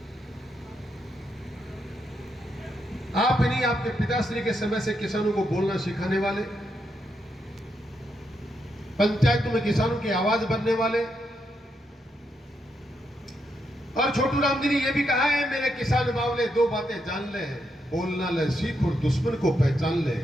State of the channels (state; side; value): normal; both; correlation 0.81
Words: आप नहीं, आपके पिताश्री के समय से किसानों को बोलना सिखाने वाले, पंचायतों में किसानों की आवाज बनने वाले। और छोटू राम जी ने यह भी कहा है, मेरे किसान बावले दो बातें जान ले, बोलना ले सीख और दुश्मन को पहचान ले।